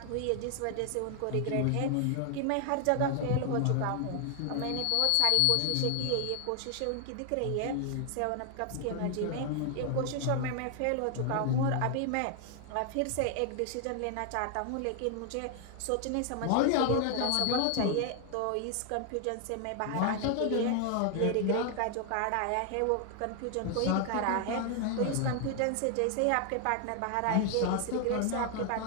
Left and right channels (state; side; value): different; both; correlation 0.00